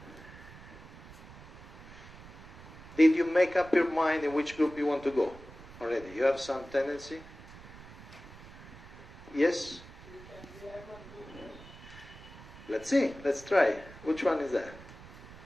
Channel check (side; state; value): right; noise; rumble, 17 dB below the sound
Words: Did you make up your mind in which group you want to go already? You have some tendency? Yes? Let's see. Let's try. Which one is that?